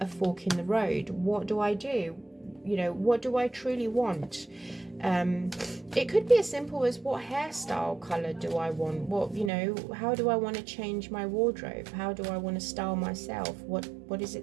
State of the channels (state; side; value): drops out; left; at 9.5 s